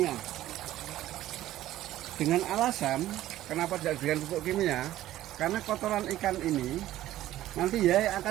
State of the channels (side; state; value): left; quieter; 14.2 dB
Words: Dengan alasan kenapa tidak diberikan pupuk kimia? Karena kotoran ikan ini nanti ya